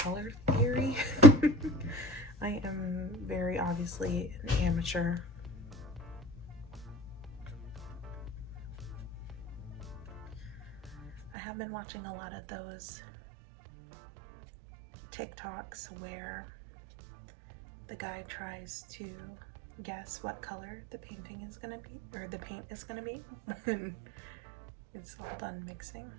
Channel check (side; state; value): left; drops out; at 11.4 s